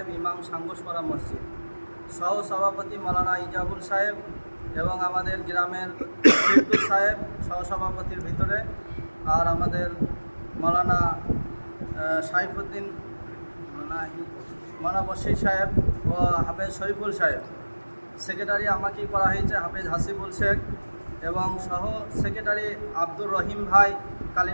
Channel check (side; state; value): both; inverted; correlation -1.00